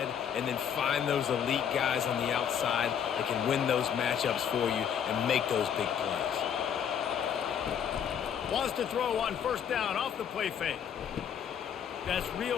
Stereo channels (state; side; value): quieter; right; 8.4 dB